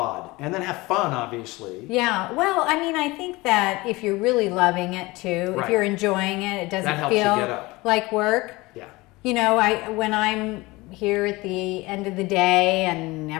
And then have fun, obviously. Yeah. Well, I mean, I think that if you're really loving it too, if you're enjoying it, it doesn't feel like work. Yeah. When I'm here at the end of the day and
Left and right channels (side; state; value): right; quieter; 21.9 dB